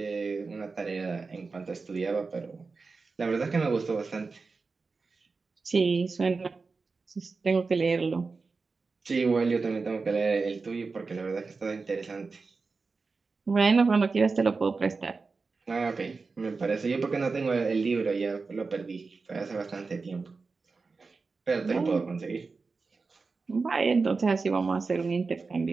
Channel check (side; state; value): left; quieter; 4.3 dB